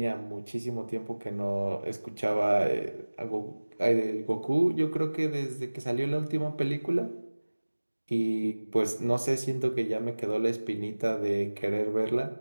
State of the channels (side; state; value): both; inverted; correlation -1.00